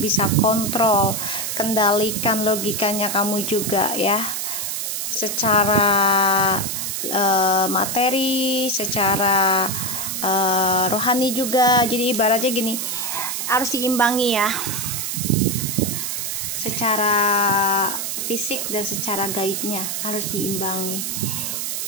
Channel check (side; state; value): right; noise; hiss, 3 dB below the sound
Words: kontrol, kendalikan logikanya kamu juga ya, secara materi, secara rohani juga. Jadi ibaratnya gini, harus diimbangi ya, secara fisik dan secara gaibnya harus diimbangi.